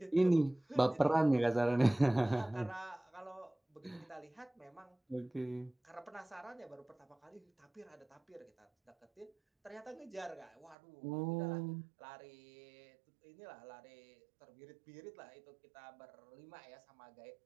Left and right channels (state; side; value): drops out; left; at 10.8 s